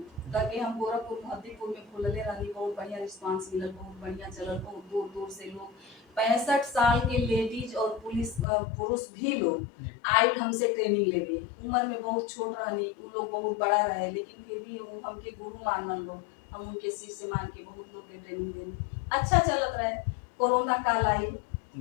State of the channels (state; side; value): drops out; right; at 8.5 s